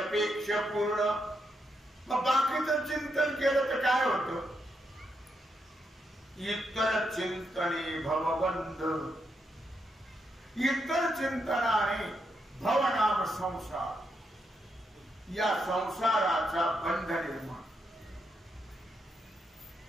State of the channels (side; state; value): both; normal; correlation 0.81